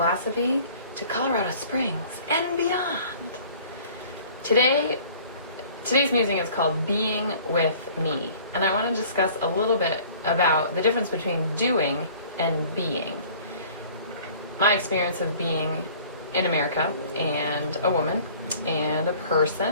to Colorado Springs and beyond. Today's musing is called Being with Me, and I want to discuss a little bit about the difference between doing and being. My experience of being in America and a woman and a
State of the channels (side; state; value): both; inverted; correlation -0.50